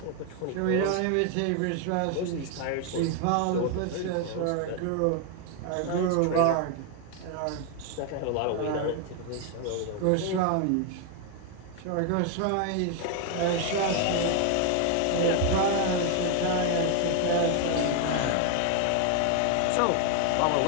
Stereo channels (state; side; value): different; both; correlation 0.01